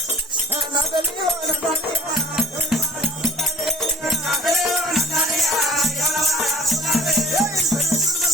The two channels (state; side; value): normal; both; correlation 0.49